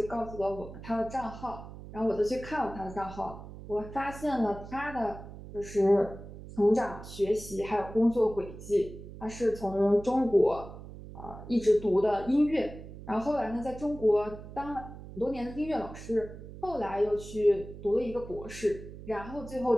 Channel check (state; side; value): noise; right; hum, 14 dB below the sound